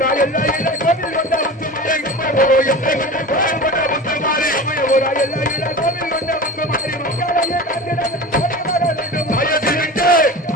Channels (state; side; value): normal; both; correlation 0.32